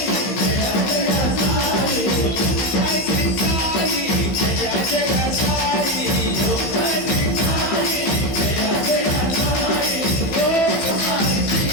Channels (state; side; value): late; right; 15 ms